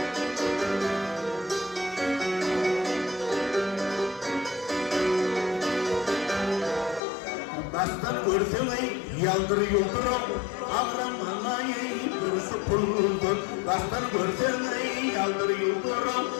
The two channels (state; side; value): drops out; right; at 7.0 s